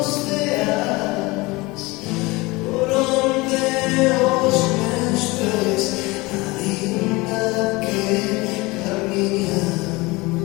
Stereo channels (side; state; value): right; quieter; 23.0 dB